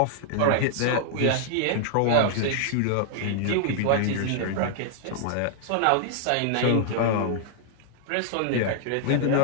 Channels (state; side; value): different; both; correlation -0.01